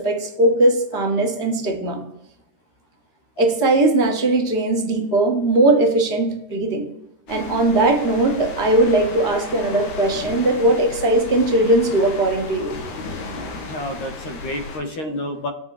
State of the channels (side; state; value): right; late; 13 ms